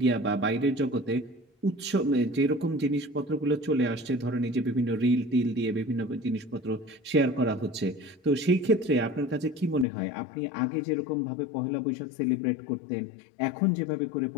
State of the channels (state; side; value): drops out; right; at 9.9 s